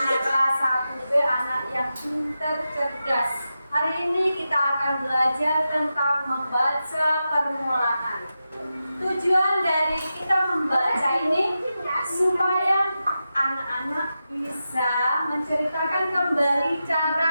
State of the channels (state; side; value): inverted; both; correlation -0.90